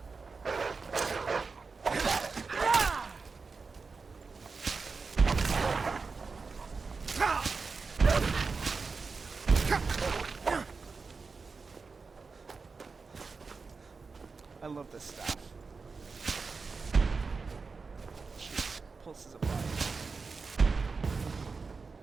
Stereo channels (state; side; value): quieter; left; 4.5 dB